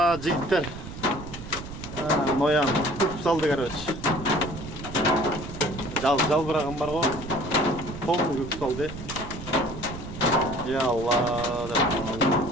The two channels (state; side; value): noise; right; rumble, 11 dB below the sound